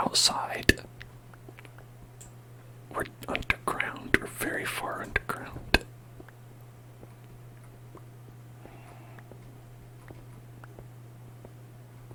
We're underground. We're very far underground.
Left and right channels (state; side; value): identical; both; correlation 1.00